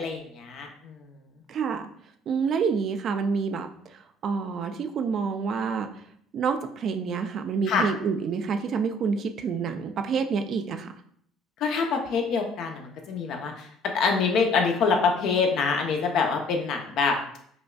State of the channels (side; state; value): both; normal; correlation 0.56